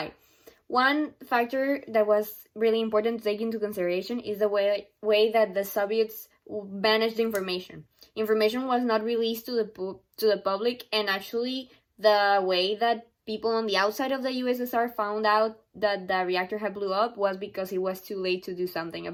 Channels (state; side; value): identical; both; correlation 1.00